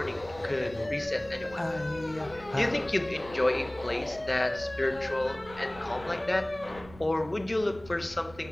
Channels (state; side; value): noise; right; rumble, 19 dB below the sound